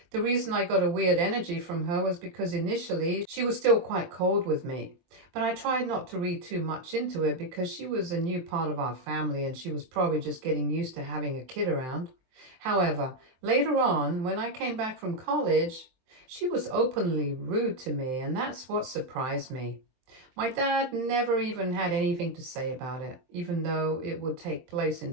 The reason I got a weird energy from her was because initially she was still quite cold with me. But I tried not to read too much into it because she was a new part of our family and she was probably just getting used to having a kid around. However, later on, when I came back from college, she was openly rude to me, and that's what surprised me. My dad never even had anything to say about it, even though it would take place in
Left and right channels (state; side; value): late; left; 23 ms